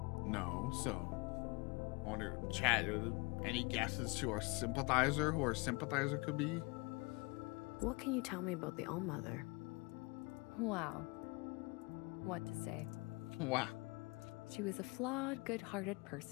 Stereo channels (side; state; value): right; quieter; 26.3 dB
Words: no. So I wonder, chat, any guesses to our sympathizer? Who our sympathizer could be? What can you tell me about the All-Mother? Wow. What to say? Wow. She was a flawed, good-hearted